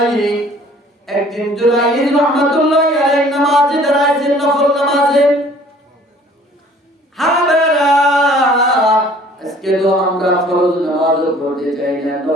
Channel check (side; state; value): both; normal; correlation 0.53